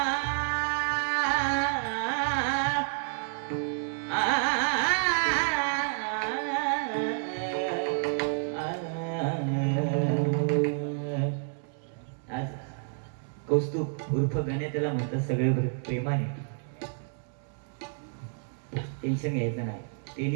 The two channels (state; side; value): silent; left; digital silence